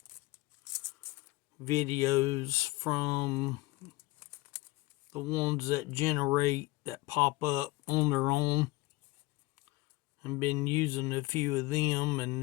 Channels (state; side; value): quieter; right; 20.9 dB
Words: videos from the ones that pop up on their own, and been using a few of them,